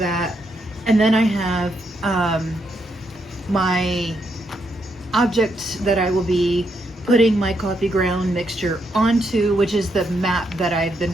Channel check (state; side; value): normal; both; correlation 0.78